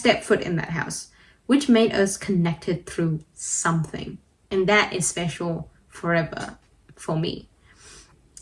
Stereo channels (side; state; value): both; identical; correlation 1.00